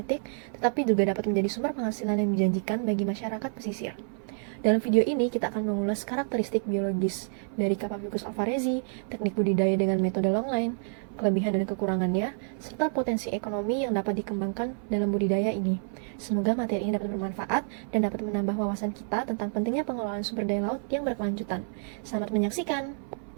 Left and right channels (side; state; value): left; silent; 59 dB below the other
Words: tetapi juga dapat menjadi sumber penghasilan yang menjanjikan bagi masyarakat pesisir. Dalam video ini, kita akan mengulas karakteristik biologis dari Capabicus alvarezi, teknik budidaya dengan metode longline, kelebihan dan kekurangannya, serta potensi ekonomi yang dapat dikembangkan dalam budidaya ini. Semoga materi ini dapat bermanfaat dan dapat menambah wawasan kita tentang pentingnya pengelolaan sumber daya laut yang berkelanjutan. Selamat menyaksikan!